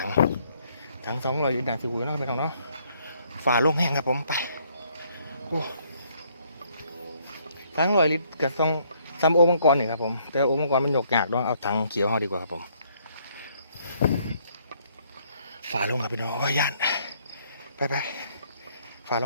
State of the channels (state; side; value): inverted; both; correlation -0.67